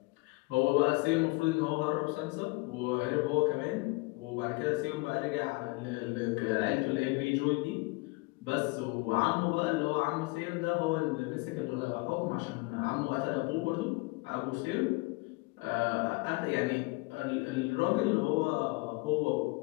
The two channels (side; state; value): right; quieter; 25.6 dB